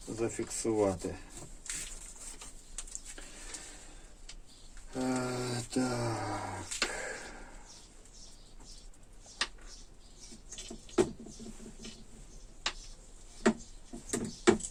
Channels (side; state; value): both; identical; correlation 1.00